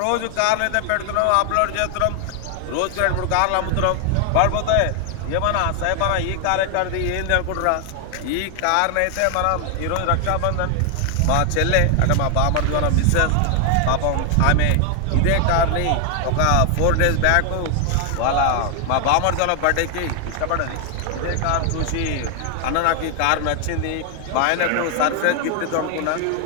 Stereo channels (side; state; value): both; different; correlation 0.00